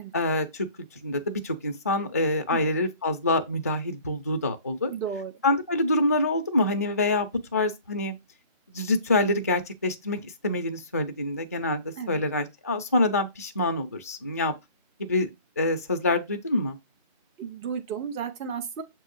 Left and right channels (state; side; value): inverted; both; correlation -0.48